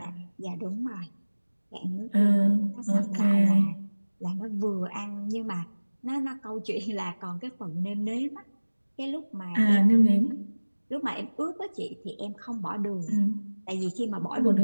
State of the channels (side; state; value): both; inverted; correlation -1.00